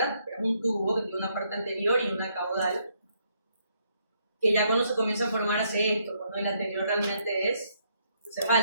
Pero es un tubo que tiene una parte anterior y una caudal, que ya cuando se comienza a formar hace esto, cuando el anterior realmente es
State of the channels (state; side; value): inverted; both; correlation -0.73